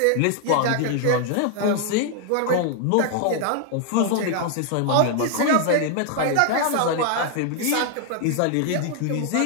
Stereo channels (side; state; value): both; different; correlation 0.00